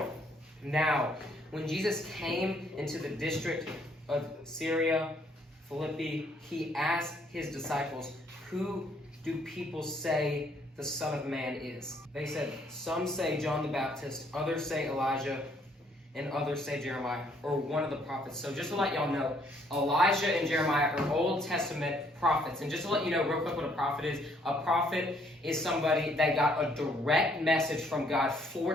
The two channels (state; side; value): normal; both; correlation 0.67